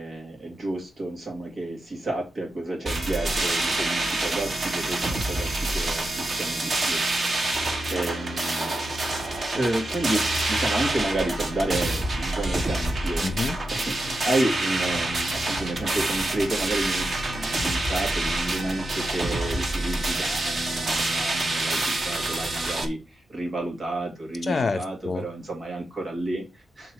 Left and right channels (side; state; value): both; normal; correlation 0.89